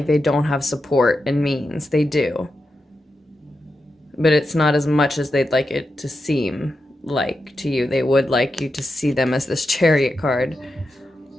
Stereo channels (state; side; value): normal; both; correlation 0.88